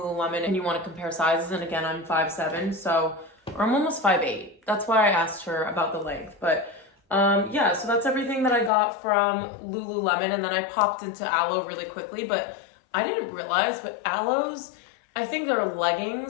and you want to compare sizes, and again, I'm 5'7", so, or I'm almost 5'8". That's why I asked her about the length. But yeah, so that's everything that I got from Lululemon. And then I popped into Alo really quickly, but I didn't realize, but Alo's, I think their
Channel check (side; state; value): right; drops out; at 8.7 s